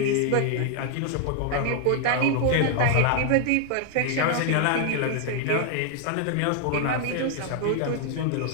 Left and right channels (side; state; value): both; different; correlation 0.00